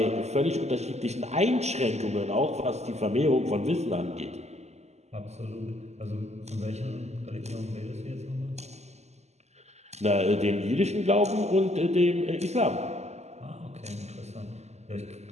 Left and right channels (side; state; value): left; late; 0.32 ms